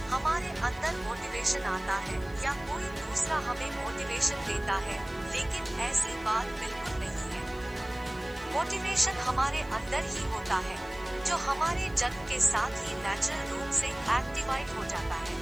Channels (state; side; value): noise; left; hiss, 25 dB below the sound